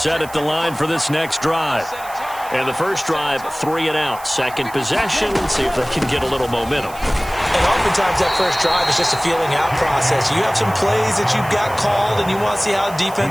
at the line for this next drive. And the first drive, 3 and out. Second possession, see if they can get a little momentum. And oftentimes that first drive is just a feeling out process. You have some plays that you've got called and you want to see how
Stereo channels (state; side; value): noise; right; hiss, 18 dB below the sound